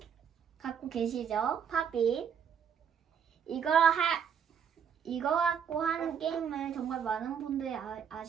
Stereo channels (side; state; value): left; quieter; 7.7 dB